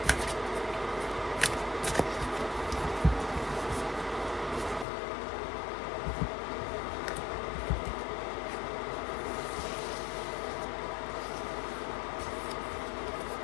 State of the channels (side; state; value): right; drops out; at 4.9 s